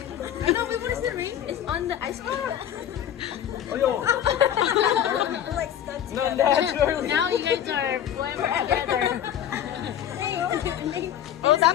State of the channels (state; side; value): quieter; right; 10.3 dB